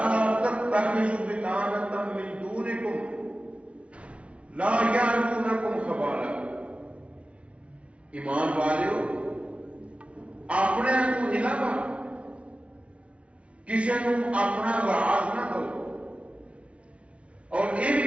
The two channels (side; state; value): left; late; 0.062 ms